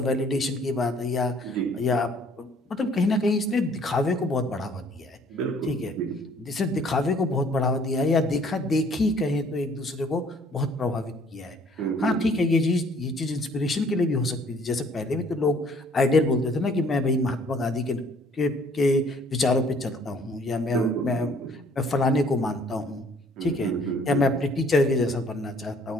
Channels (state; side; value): normal; both; correlation 0.59